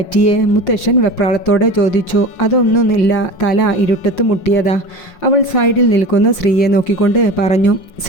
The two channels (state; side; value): late; right; 5.6 ms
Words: മുത്തശ്ശൻ വെപ്രാളത്തോടെ ചോദിച്ചു. അതൊന്നുമില്ല, തല ഇരുട്ടത്ത് മുട്ടിയതാ, അവൾ സൈഡിൽ നിൽക്കുന്ന ശ്രീയെ നോക്കിക്കൊണ്ട് പറഞ്ഞു.